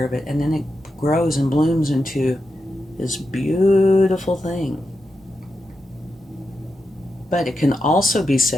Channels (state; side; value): normal; both; correlation 0.88